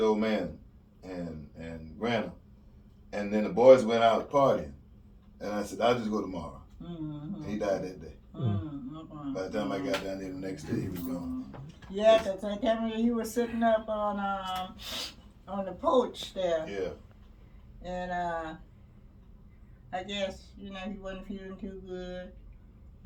old man and Grandma. And then the boys went out partying. And I said, I'll just go tomorrow. And he died that day. By the time I got down there the next day, he was gone. Yeah, because I tell me he was sitting up on the porch there. Yeah. And I guess, you know, he wasn't feeling too good.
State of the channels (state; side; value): identical; both; correlation 1.00